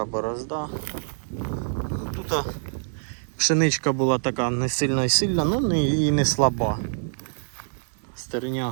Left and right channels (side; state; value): left; silent; digital silence